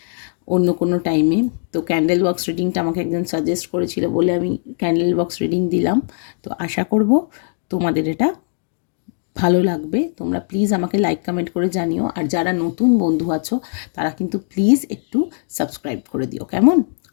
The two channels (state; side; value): silent; right; digital silence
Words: অন্য কোনো টাইমে। তো ক্যান্ডেল বক্স রিডিংটা আমাকে একজন সাজেস্ট করেছিল বলে আমি ক্যান্ডেল বক্স রিডিং দিলাম। তো আশা করব তোমাদের এটা ভালো লাগবে। তোমরা প্লিজ আমাকে লাইক কমেন্ট করে জানিও, আর যারা নতুন বন্ধু আছো তারা কিন্তু প্লিজ একটু সাবস্ক্রাইব করে দিও, কেমন?